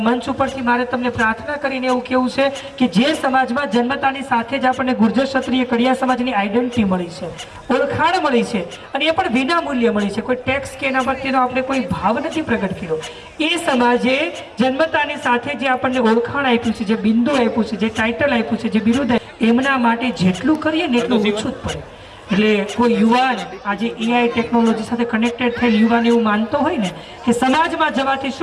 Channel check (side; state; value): both; identical; correlation 1.00